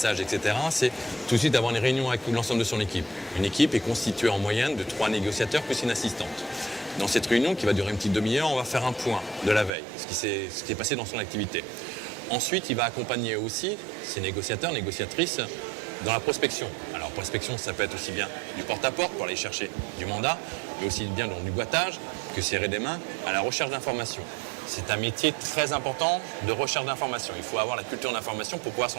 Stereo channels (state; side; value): drops out; left; at 9.8 s